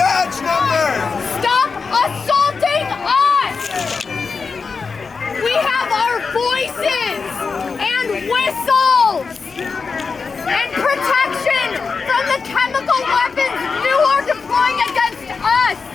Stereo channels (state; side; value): quieter; right; 4.9 dB